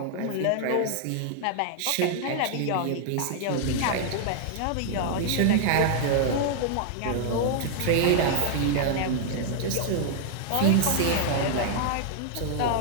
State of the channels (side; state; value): both; different; correlation -0.01